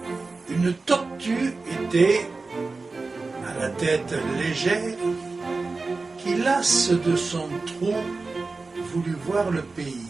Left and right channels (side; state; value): left; quieter; 3.8 dB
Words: Une tortue était, à la tête légère, qui, lasse de son trou, voulut voir le pays.